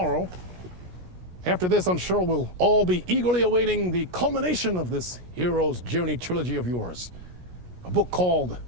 After this, I'm sure we'll all be eagerly awaiting the culmination of this hero's journey trilogy of yours. A book called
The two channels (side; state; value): left; late; 17 ms